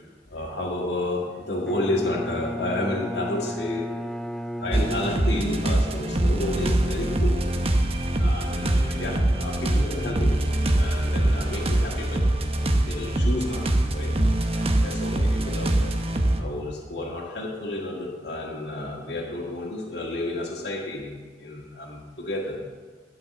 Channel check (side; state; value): both; normal; correlation 0.81